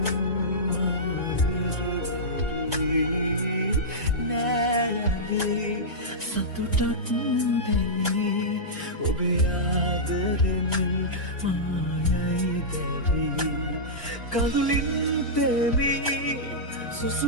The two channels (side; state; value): both; normal; correlation -0.12